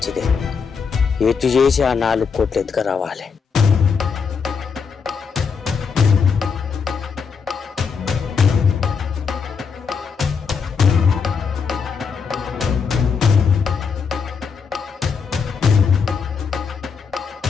ఎటు చేసి ఆ 4 కోట్లు ఎత్తుక రావాలి.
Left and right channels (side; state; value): right; quieter; 5.9 dB